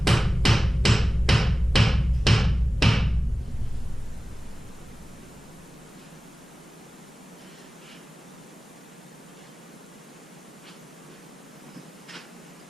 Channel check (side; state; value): both; normal; correlation 0.97